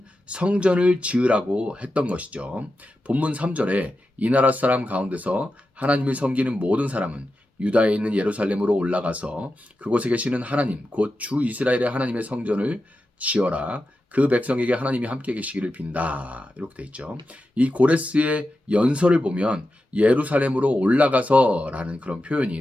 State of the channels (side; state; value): both; normal; correlation 0.90